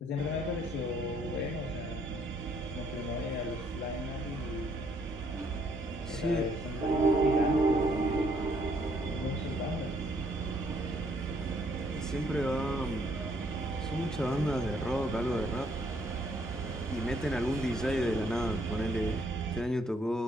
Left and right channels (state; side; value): normal; both; correlation 0.68